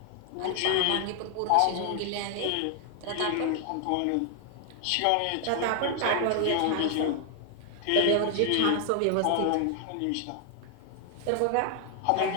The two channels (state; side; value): different; both; correlation 0.00